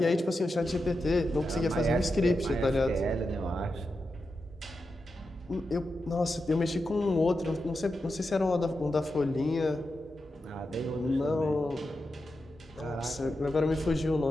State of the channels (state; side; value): normal; both; correlation 0.89